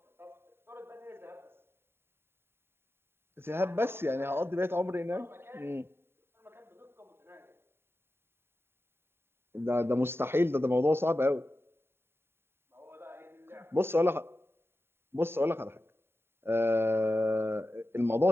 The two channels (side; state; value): left; late; 0.11 ms